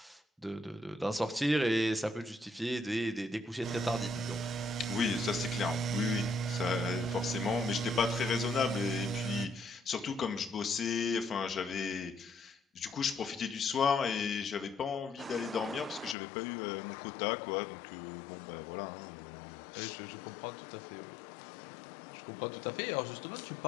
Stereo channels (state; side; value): drops out; right; at 16.2 s